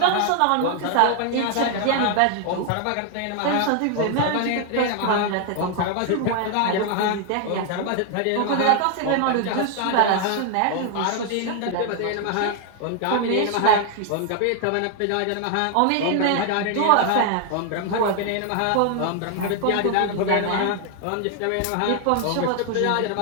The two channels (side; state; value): both; different; correlation 0.00